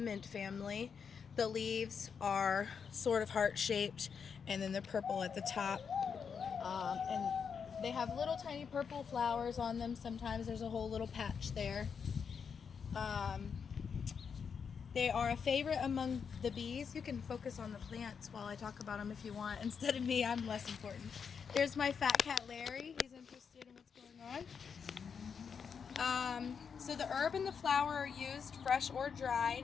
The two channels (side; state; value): right; quieter; 6.4 dB